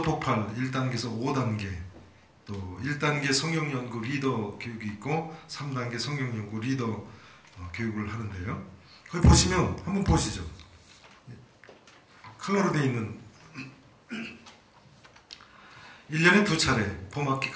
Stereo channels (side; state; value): both; identical; correlation 1.00